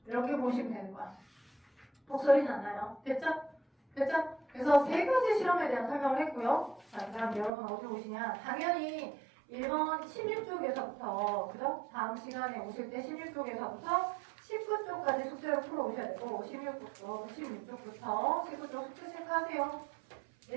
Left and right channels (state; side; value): drops out; left; at 7.5 s